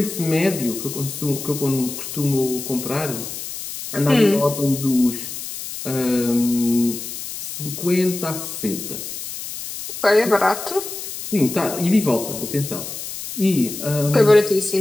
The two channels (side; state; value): left; noise; hiss, 8 dB below the sound